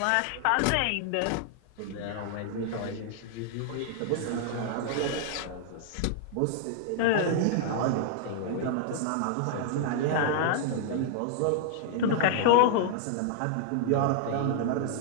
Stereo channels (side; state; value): both; different; correlation 0.00